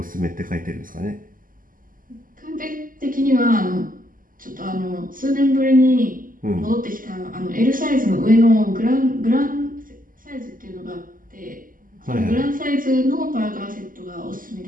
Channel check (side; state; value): left; late; 0.40 ms